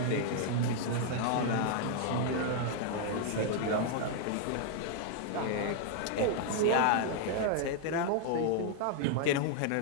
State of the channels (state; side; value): different; both; correlation 0.00